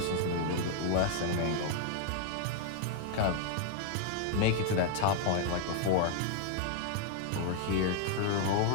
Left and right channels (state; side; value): different; both; correlation 0.00